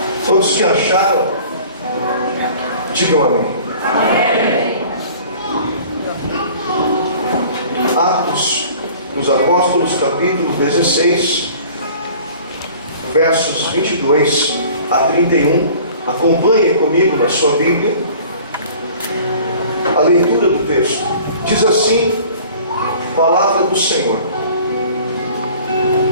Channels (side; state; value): both; inverted; correlation -0.47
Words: Todos que acharam, digam amém. Atos dos Apóstolos, capítulo 16, versos 22 a 31. Acompanhem comigo na sua Bíblia a leitura do texto. Diz assim a palavra do Senhor: